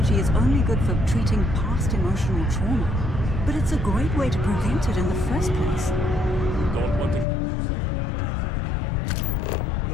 is only good for treating past emotional trauma. But it's a great way to prevent it in the first place. Don't want to catch yourself with a loose grip on your equipment when one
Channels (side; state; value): right; drops out; at 7.2 s